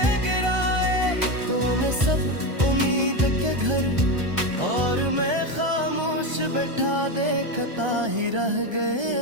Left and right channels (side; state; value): left; late; 1.3 ms